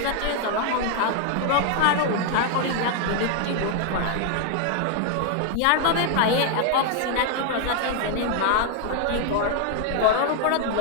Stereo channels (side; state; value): both; different; correlation 0.00